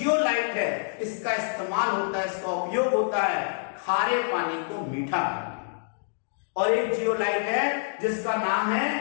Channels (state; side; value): silent; right; digital silence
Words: है इसका इस्तेमाल होता है, इसका उपयोग होता है खारे पानी को मीठा करने। और एक जियोलाइट है जिसका नाम है